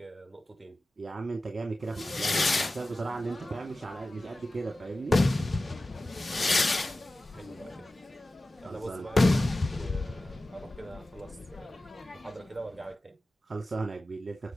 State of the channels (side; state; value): both; normal; correlation 0.94